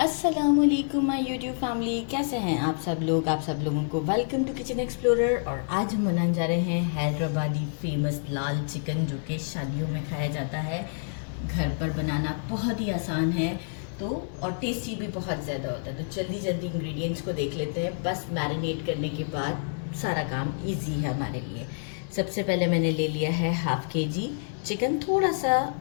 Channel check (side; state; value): right; silent; 59 dB below the other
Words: माय यूट्यूब फैमिली, कैसे हैं आप सब लोग। आप सब लोगों को वेलकम टू किचन एक्सप्लोरर। और आज हम बनाने जा रहे हैं हैदराबादी फेमस लाल चिकन, जो कि शादियों में खाया जाता है। घर पर बनाना बहुत ही आसान है तो और टेस्टी भी बहुत ज़्यादा होता है। तो जल्दी जल्दी इंग्रेडिएंट्स को देख लेते हैं। बस मैरिनेट करने के बाद सारा काम ईजी है हमारे लिए। सबसे पहले मैंने ले लिया है हाफ केजी चिकन, थोड़ा